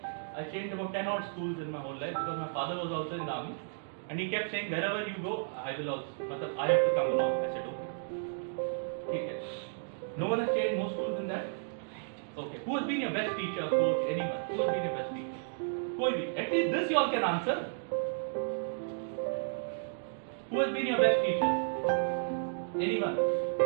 I changed about 10 odd schools in my whole life because my father was also in the army and he kept saying wherever you go, I will also, I have to come along. I said okay. No one has changed more schools than that. Okay. Who has been your best teacher, coach, anyone? Who has been your best teacher? At least this you all can answer. Who has been your best teacher? Anyone?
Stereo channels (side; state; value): left; silent; digital silence